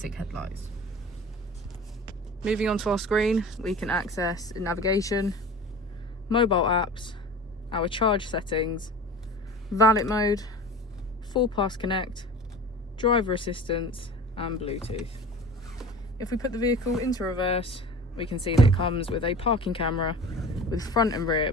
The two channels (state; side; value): normal; both; correlation 0.38